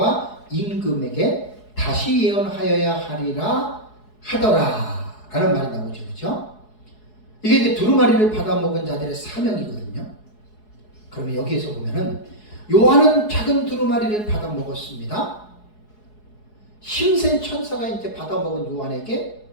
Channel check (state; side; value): late; right; 4.7 ms